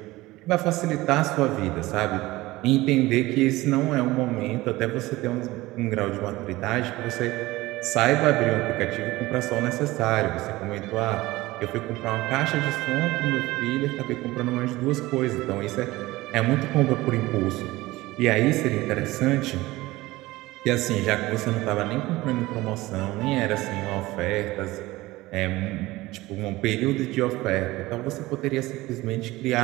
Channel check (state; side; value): quieter; left; 19.0 dB